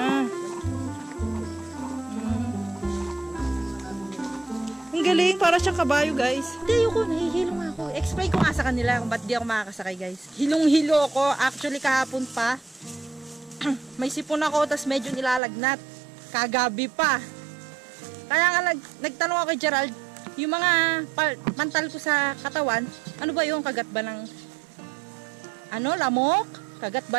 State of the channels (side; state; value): left; drops out; at 15.4 s